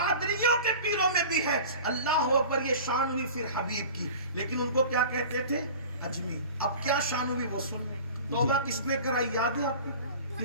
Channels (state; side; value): inverted; both; correlation -0.39